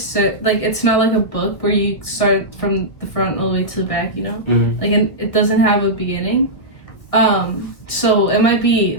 like, it's not like a book where you start from the front all the way to the back, you know? Mm-hmm. Like, it doesn't have a beginning. So it might be,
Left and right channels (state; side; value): late; right; 1.4 ms